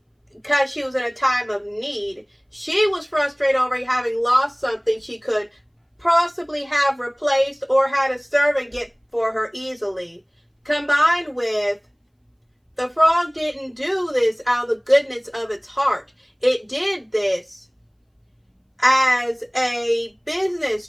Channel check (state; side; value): identical; both; correlation 1.00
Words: because she was in a time of need. She was frustrated over having lost something she could possibly have replaced or had a servant get for her easily. Combined with, the frog didn't do this out of the goodness of its heart. It did this as a business